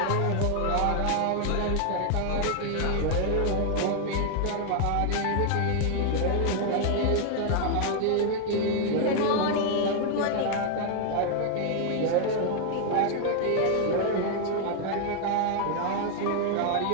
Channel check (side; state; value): both; different; correlation -0.01